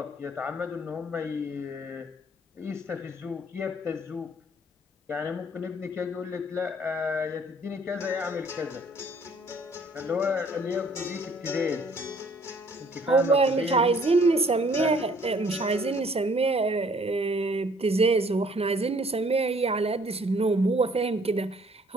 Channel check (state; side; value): normal; both; correlation 0.59